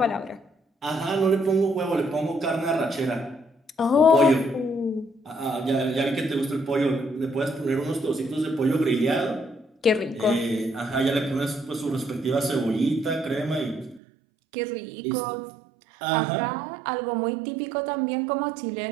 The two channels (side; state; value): left; drops out; at 14.0 s